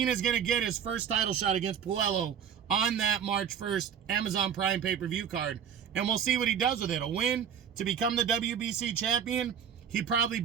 is going to get his first title shot against Puello on that March 1st Amazon Prime pay-per-view card, and we'll see what he does with it. A win to become the WBC champion, he probably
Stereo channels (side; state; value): left; quieter; 8.2 dB